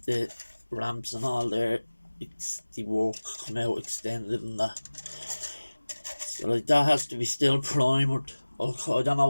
the ramps and all there. It's the work come out extended and that. So like that has to be still primered. I don't know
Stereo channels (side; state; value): both; inverted; correlation -1.00